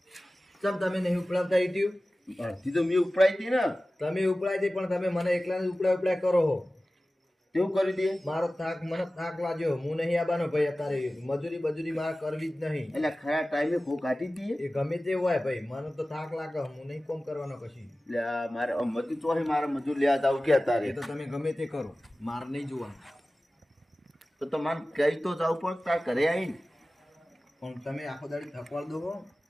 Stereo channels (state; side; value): normal; both; correlation 0.96